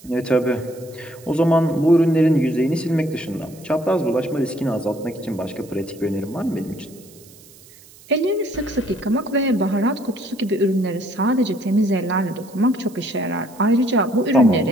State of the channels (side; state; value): right; noise; hiss, 23 dB below the sound